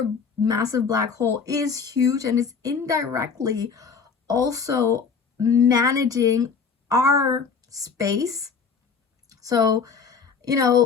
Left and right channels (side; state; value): right; quieter; 5.7 dB